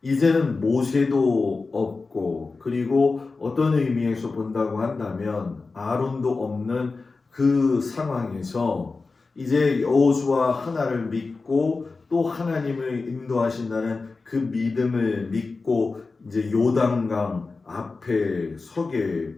이제는 모세도 없고, 그리고 어떤 의미에서 본다고 한다면 아론도 없는 그 상황에서 이제 여호수아 하나를 믿고 또 하나님을 인도하신다는 그 믿음을 믿고 이제 요단강 앞에 서게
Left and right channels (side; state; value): right; quieter; 4.0 dB